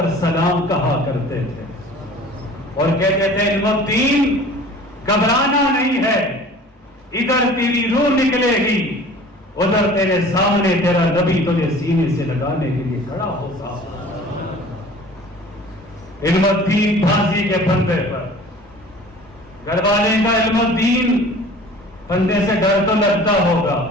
سلام کہا کرتے تھے اور کہتے تھے علم الدین گھبرانا نہیں ہے, ادھر تیری روح نکلے گی, ادھر تیرے سامنے تیرا نبی تجھے سینے سے لگانے کے لیے کھڑا ہوگا. علم الدین پھانسی کے پھندے پر, گھر والے کا علم الدین پھندے سے ڈر تو لگتا ہوگا.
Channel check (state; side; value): normal; both; correlation 0.45